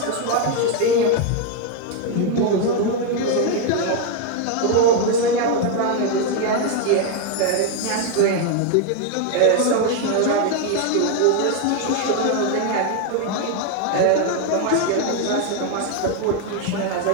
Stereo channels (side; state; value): both; different; correlation 0.01